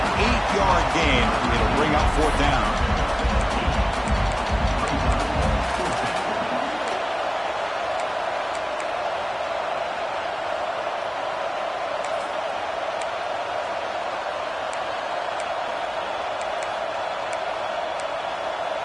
8-yard gain. It'll bring up 4th down.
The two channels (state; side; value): identical; both; correlation 1.00